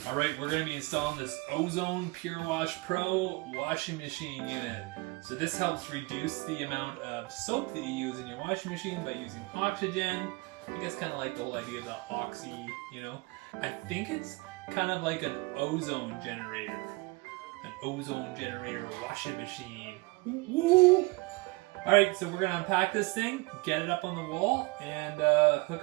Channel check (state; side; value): quieter; left; 25.5 dB